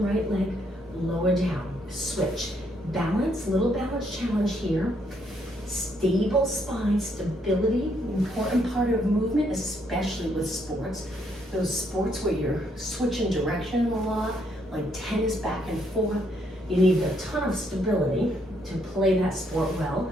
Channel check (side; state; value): both; normal; correlation 0.73